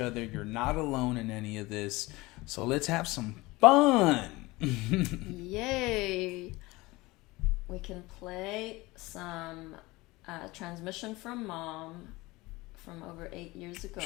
You're not alone in any of this. So let's have some fun. Yay. We can play some transmission from Mom from over 8 years ago.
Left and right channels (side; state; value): right; quieter; 21.4 dB